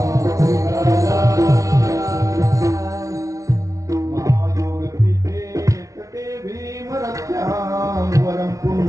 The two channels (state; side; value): late; left; 0.16 ms